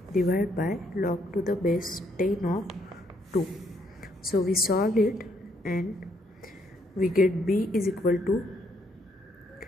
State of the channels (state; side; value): normal; both; correlation 0.72